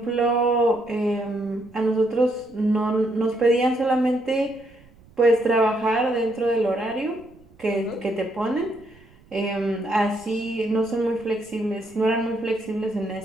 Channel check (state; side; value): noise; right; rumble, 27 dB below the sound